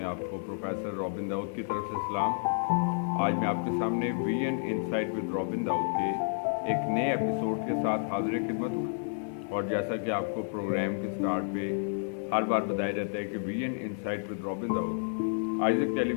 आपको प्रोफेसर रॉबिन दाऊद की तरफ से सलाम। आज मैं आपके सामने VN insight with Robin Dawood के एक नए एपिसोड के साथ हाजिर खिदमत हूँ। और जैसा कि आपको प्रोग्राम के स्टार्ट पे हर बार बताया जाता है कि VN insight with Robin Dawood Isaac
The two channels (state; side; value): silent; right; digital silence